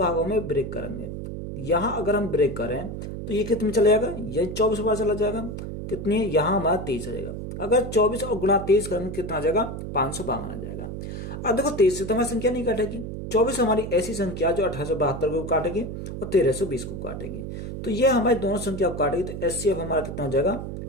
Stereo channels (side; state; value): right; noise; hum, 7 dB below the sound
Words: में ब्रेक करेंगे। यहां अगर हम ब्रेक करें तो ये कितने में चला जाएगा? ये 24 बार चला जाएगा। कितनी है? यहां हमारा 23 रहेगा। अगर 24 और गुणा 23 करेंगे कितना आ जाएगा? 552 आ जाएगा। अब देखो 23 से तो हमारी संख्या नहीं काटेगी। 24 हमारी ऐसी संख्या जो 1872 को काटेगी और 1320 को काटेगी। तो ये हमारी दोनों संख्या को काटेगी। तो एचसीएफ हमारा कितना हो जाएगा?